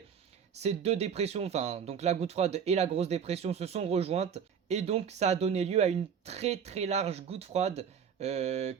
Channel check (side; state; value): left; quieter; 7.4 dB